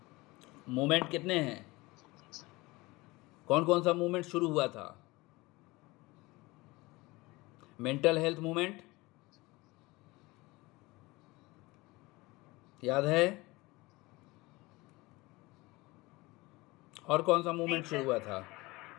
मूवमेंट कितने हैं? कौन कौन सा मूवमेंट शुरू हुआ था? मेंटल हेल्थ मूवमेंट याद है? और कौन सा मूवमेंट शुरू हुआ था?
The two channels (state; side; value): quieter; right; 22.1 dB